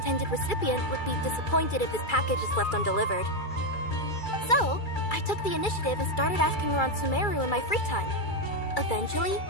recipient would be disappointed if this package is left undelivered. So, I took the initiative and started asking around Sumeru in my free time. Eventually,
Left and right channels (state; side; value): late; right; 2.3 ms